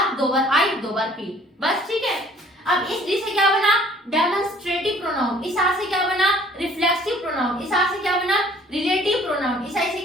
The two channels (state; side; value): normal; both; correlation 0.55